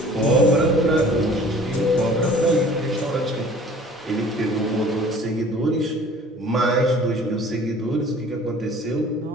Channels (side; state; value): both; normal; correlation 0.49